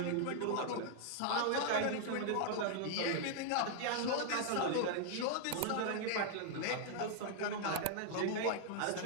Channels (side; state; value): both; different; correlation 0.00